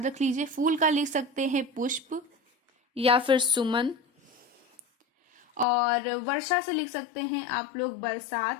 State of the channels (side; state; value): right; drops out; at 5.7 s